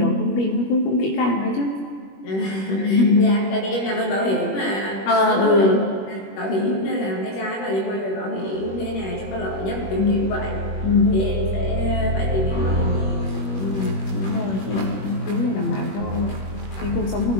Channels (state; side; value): late; right; 21 ms